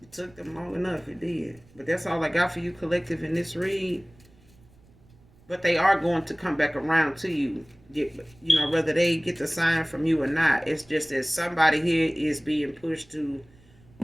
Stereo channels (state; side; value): noise; right; rumble, 28 dB below the sound